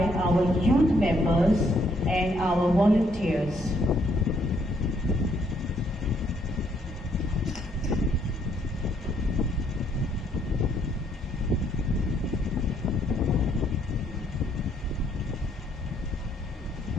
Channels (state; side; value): normal; both; correlation 0.70